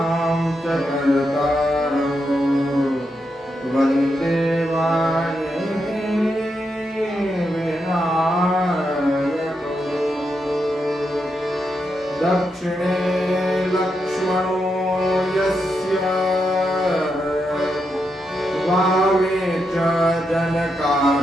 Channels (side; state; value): both; normal; correlation 0.84